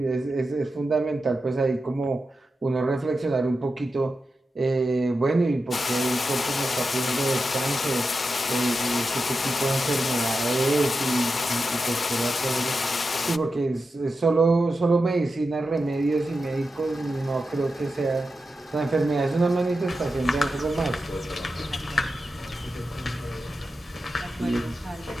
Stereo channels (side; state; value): both; normal; correlation 0.90